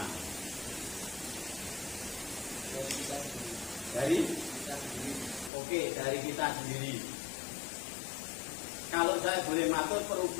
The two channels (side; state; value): right; drops out; at 5.5 s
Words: Dari kita sendiri. Kalau saya boleh matur,